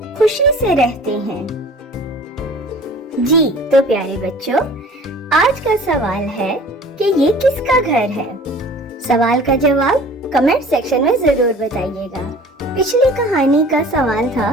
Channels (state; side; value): normal; both; correlation 0.46